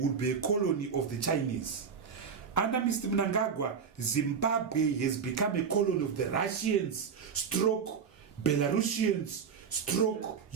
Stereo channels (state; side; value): quieter; left; 6.4 dB